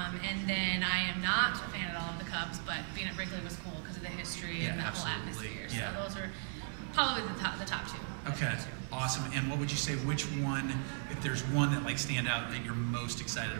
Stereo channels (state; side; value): silent; left; 53 dB below the other